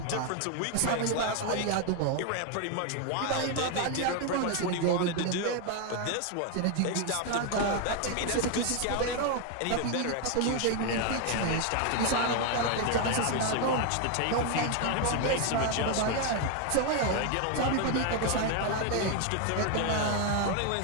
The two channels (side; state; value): both; different; correlation 0.01